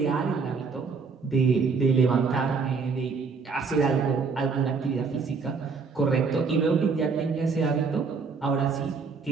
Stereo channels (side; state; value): left; quieter; 5.0 dB